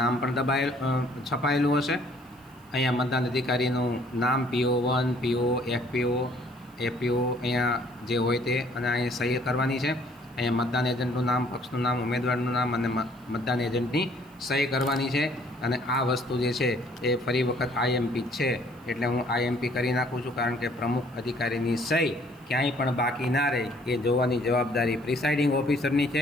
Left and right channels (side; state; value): right; noise; hiss, 30 dB below the sound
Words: પણ છપાયેલું હશે. અહીંયા મતદાન અધિકારીનું નામ PO1, PO, FPO, FPO અહીંયા જે હોય તે, અને અહીંયા સહી કરવાની છે. અહીંયા મતદાન એજન્ટનું નામ, પક્ષનું નામ, ઉમેદવારનું નામ અને મતદાન એજન્ટની સહી કરવાની છે. અને આ વસ્તુ જે છે એ ફરી વખત આઈએમપી છે એટલે હું આઈએમપી કરી નાખું છું, કારણ કે પ્રમુખ અધિકારીની સહી ક્યાંય પણ બાકી ના રહે એ જોવાની જવાબદારી પ્રિસાઇડિંગ ઓફિસરની